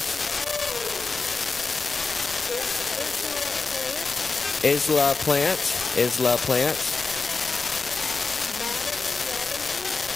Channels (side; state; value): right; quieter; 4.1 dB